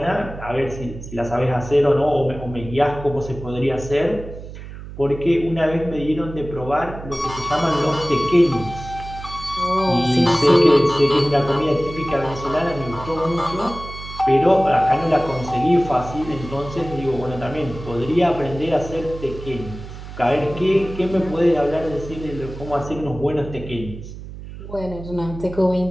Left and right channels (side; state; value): right; noise; hum, 12 dB below the sound